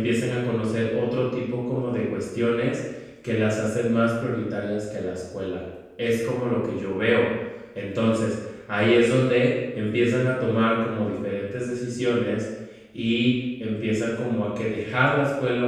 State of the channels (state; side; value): identical; both; correlation 1.00